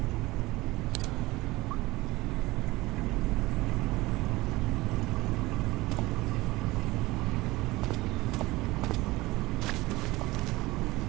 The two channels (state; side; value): quieter; left; 20.1 dB